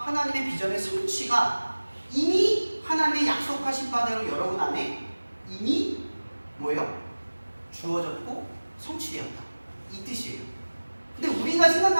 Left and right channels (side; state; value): both; inverted; correlation -1.00